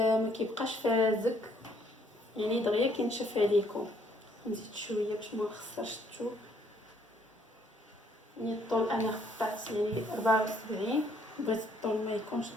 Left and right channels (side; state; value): both; normal; correlation 0.66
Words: كيبقاش فازك، يعني دغيا كينشف عليكم. نزيد شويه باش ما نخسرش الثوب. يعني الطول انا قطعت يعني 74، بغيت الطول ما يكونش